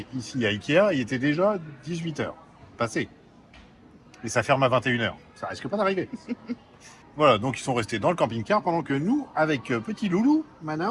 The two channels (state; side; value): identical; both; correlation 1.00